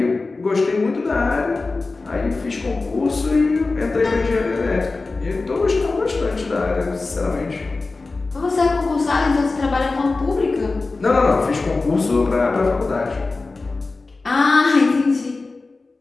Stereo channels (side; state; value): right; quieter; 3.6 dB